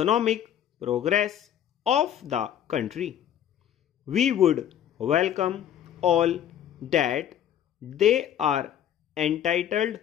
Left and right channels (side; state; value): right; quieter; 10.2 dB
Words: progress of the country. We would welcome all that they are entitled